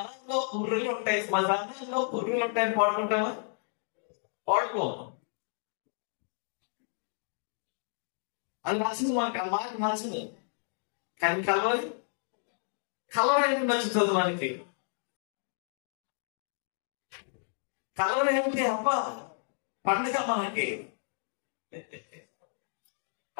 పుర్రులు ఉంటాయి, మసానంలో పుర్రులు ఉంటాయని పాడుకుంటావా? పాడుకో. అది నచ్చింది మనకి, ఆ మాట నచ్చింది. కానీ కలవరి ఎందుకు నచ్చుతుంది మనకి? కలవరి ఏమిటి? అబ్బా పండుగ మనకి.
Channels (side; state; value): right; silent; digital silence